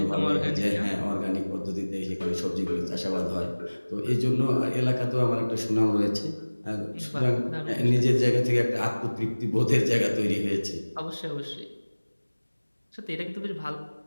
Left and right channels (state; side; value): inverted; both; correlation -1.00